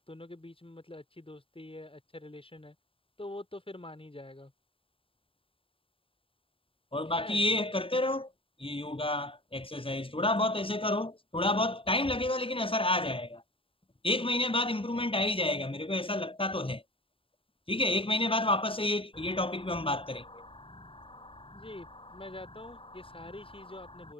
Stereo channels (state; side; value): late; right; 0.26 ms